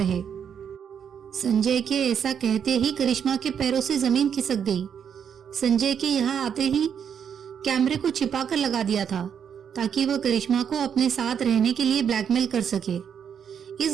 संजय के ऐसा कहते ही करिश्मा के पैरों से जमीन खिसक गई। संजय के यहाँ आते ही कैमरे को छिपाकर लगा दिया था ताकि वह करिश्मा को अपने साथ रहने के लिए ब्लैकमेल कर सके।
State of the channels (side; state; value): left; quieter; 7.8 dB